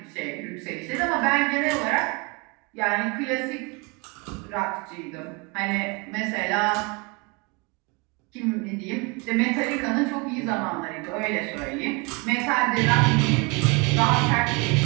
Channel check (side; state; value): left; quieter; 29.6 dB